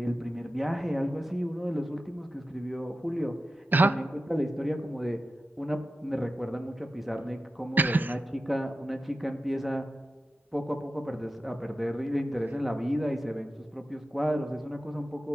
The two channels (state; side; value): normal; both; correlation 0.92